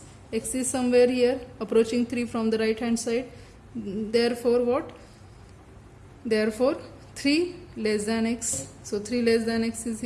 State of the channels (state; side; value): identical; both; correlation 1.00